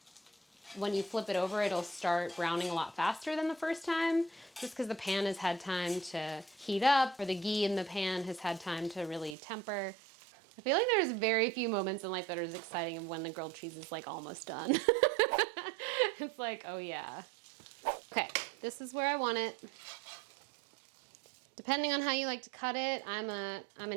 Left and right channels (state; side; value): drops out; left; at 9.3 s